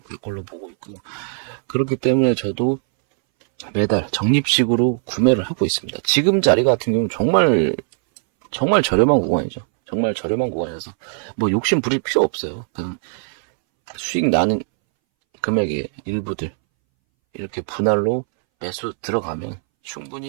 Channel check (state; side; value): silent; left; 64 dB below the other